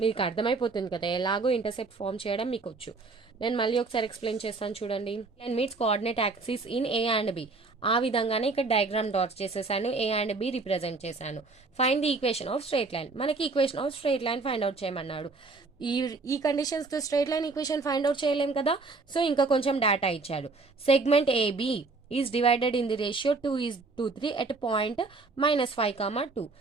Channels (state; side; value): quieter; left; 3.9 dB